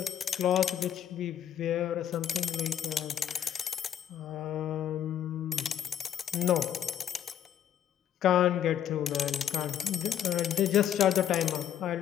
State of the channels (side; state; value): right; quieter; 9.9 dB